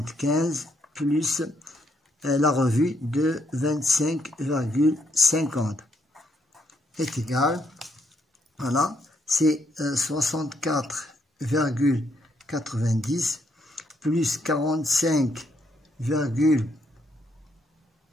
plus la revue de 25,50 est égal, voilà, c'est 64,90 plus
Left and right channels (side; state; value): both; normal; correlation 0.74